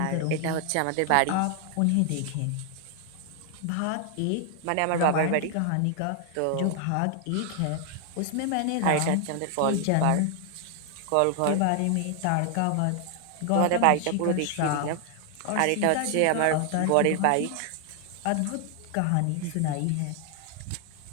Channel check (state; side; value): different; both; correlation 0.00